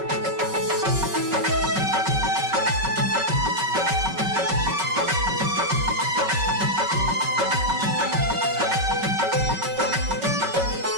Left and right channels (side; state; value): left; late; 5.3 ms